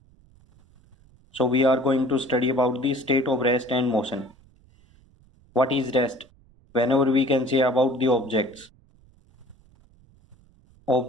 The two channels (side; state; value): right; noise; rumble, 30 dB below the sound